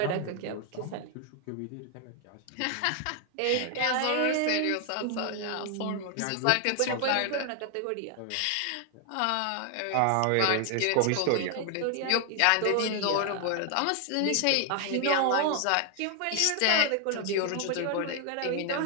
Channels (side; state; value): both; different; correlation 0.00